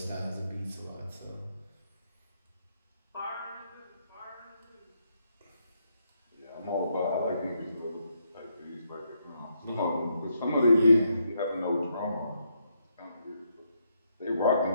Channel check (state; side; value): inverted; both; correlation -0.77